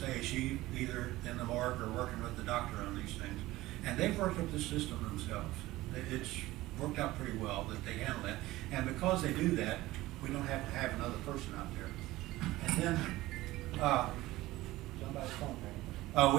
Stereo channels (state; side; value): quieter; left; 17.7 dB